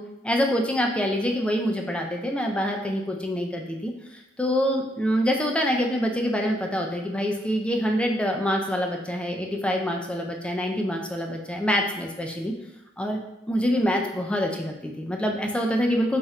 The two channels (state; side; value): normal; both; correlation 0.76